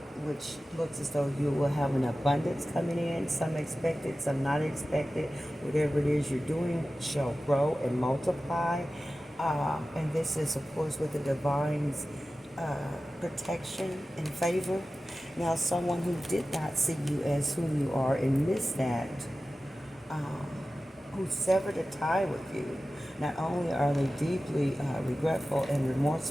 which looks as though you will have an abundance coming in, some expected, some not expected. Whatever it is you're doing shall grow and multiply. And this is, of course, with the divine's protection and favor. Now, someone who did not see you as whom you are and missed that, who severed a tie with you, not only are they deeply regretful and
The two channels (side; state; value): both; normal; correlation 0.95